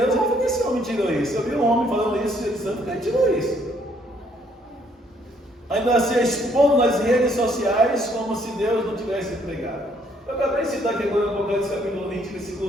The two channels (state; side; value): normal; both; correlation 0.67